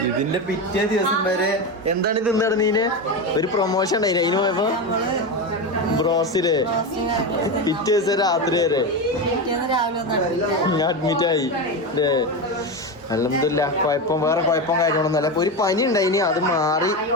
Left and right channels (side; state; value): both; normal; correlation 0.17